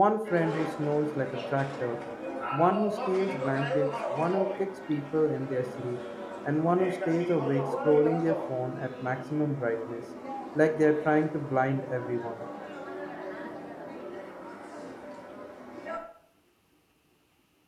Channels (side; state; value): both; identical; correlation 1.00